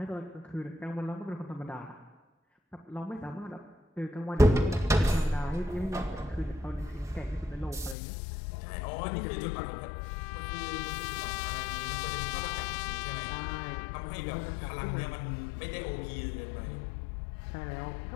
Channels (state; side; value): drops out; right; at 8.0 s